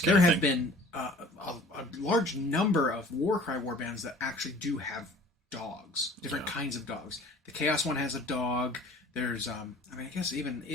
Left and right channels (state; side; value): normal; both; correlation 0.48